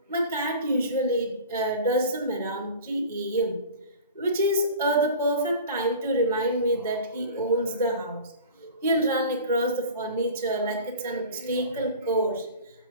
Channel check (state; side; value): inverted; both; correlation -0.38